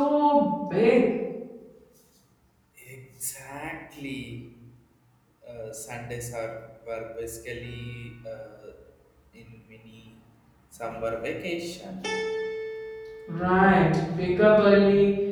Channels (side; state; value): both; identical; correlation 1.00